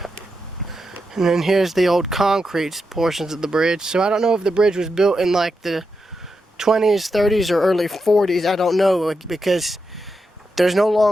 And then here's the old concrete portions of the bridge. So I don't know if the bridge was built in like the 20s, 30s, or early 40s. I don't know, because there's no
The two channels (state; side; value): normal; both; correlation 0.86